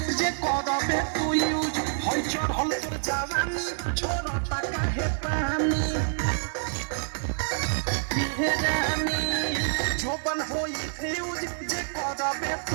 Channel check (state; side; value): silent; left; digital silence